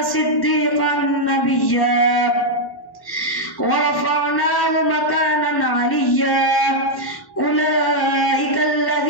صديقا نبيا ورفعناه مكانا عليا أولئك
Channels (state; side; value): late; right; 1.1 ms